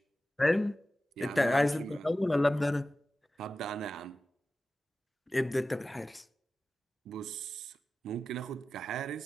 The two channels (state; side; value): normal; both; correlation 0.94